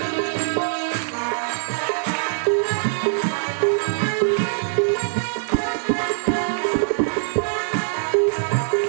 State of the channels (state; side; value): silent; left; 64 dB below the other